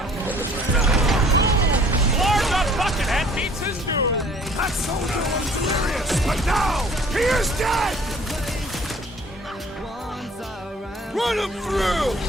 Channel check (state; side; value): normal; both; correlation 0.53